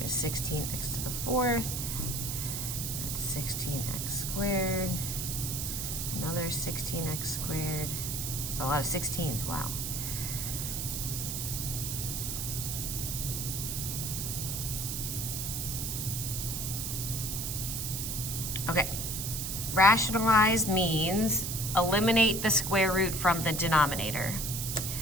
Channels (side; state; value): right; noise; hiss, 3 dB below the sound